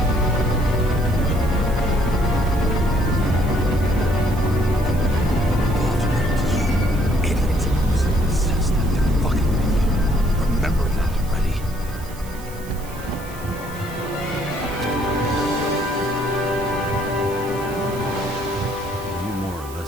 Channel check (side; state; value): right; noise; hiss, 18 dB below the sound